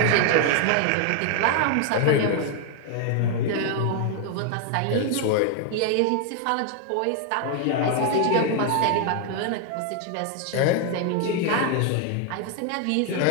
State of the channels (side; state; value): both; different; correlation 0.00